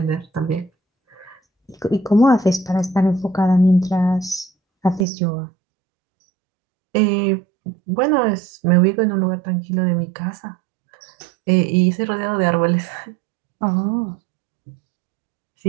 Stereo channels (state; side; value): drops out; left; at 5.1 s